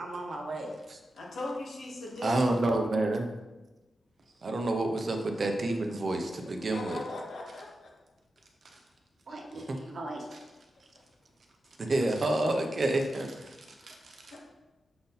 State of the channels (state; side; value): normal; both; correlation 0.90